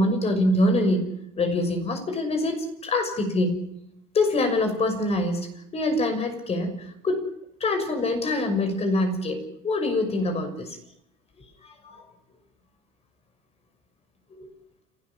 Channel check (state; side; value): normal; both; correlation 0.55